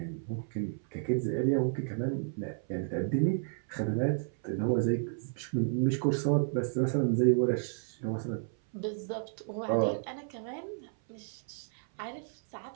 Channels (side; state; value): left; silent; 56 dB below the other